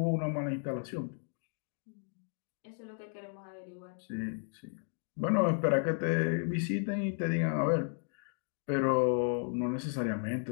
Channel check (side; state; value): right; silent; 55 dB below the other